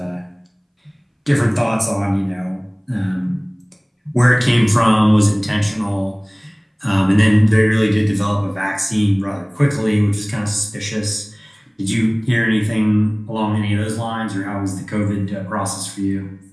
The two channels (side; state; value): both; identical; correlation 1.00